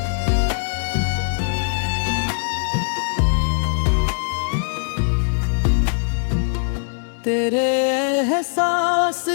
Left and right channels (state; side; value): silent; right; digital silence